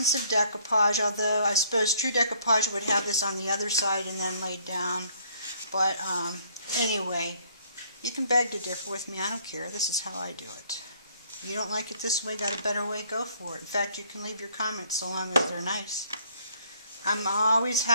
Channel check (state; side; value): inverted; both; correlation -0.62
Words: of decoupage, although I suppose true decoupage would have this on the other side and then laid down. But anyway, you can beg to differ with me. I don't care. This is how I do it. You don't like it this way, got a better way, go for it. In fact, you can leave your comments so long as they're nice. I'm always